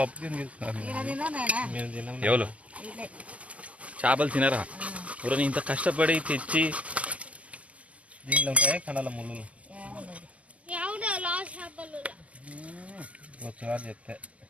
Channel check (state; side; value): late; left; 0.064 ms